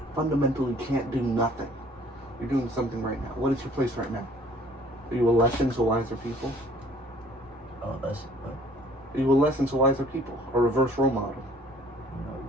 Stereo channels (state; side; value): normal; both; correlation 0.55